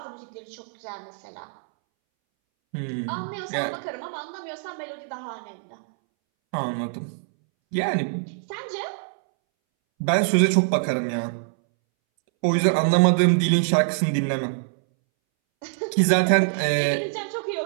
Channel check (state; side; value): silent; left; 62 dB below the other